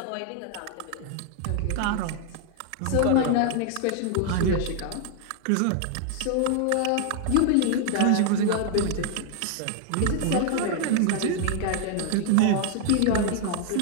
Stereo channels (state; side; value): different; both; correlation 0.00